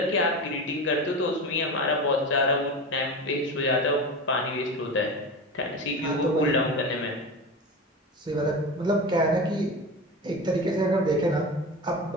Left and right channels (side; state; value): both; normal; correlation 0.27